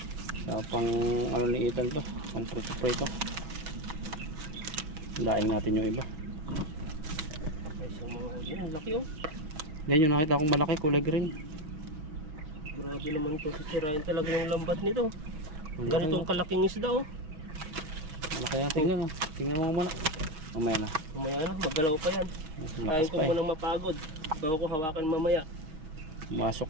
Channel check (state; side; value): late; left; 6.3 ms